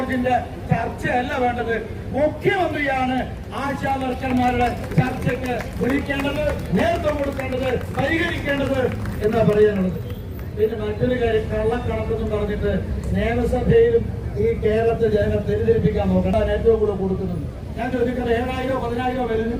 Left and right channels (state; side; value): identical; both; correlation 1.00